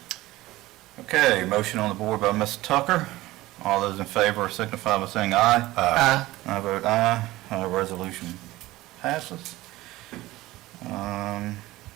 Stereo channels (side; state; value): left; quieter; 17.9 dB